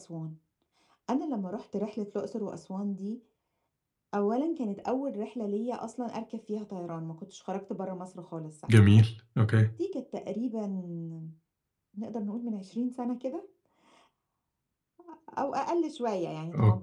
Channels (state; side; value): identical; both; correlation 1.00